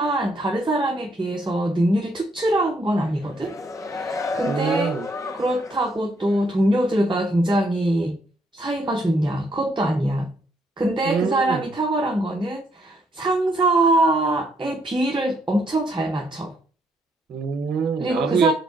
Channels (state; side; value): normal; both; correlation 0.73